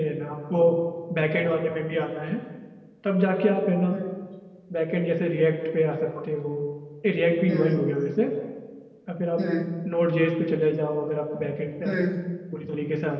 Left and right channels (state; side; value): identical; both; correlation 1.00